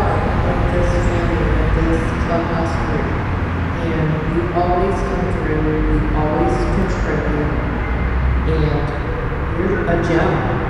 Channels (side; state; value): both; identical; correlation 1.00